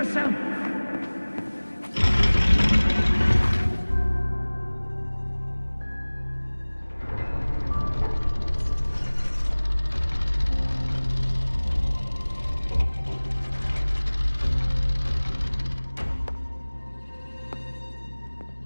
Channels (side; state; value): both; inverted; correlation -1.00